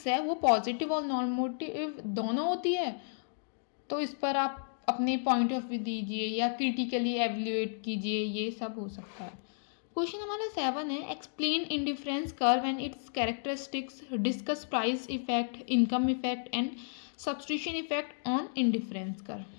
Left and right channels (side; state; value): right; silent; digital silence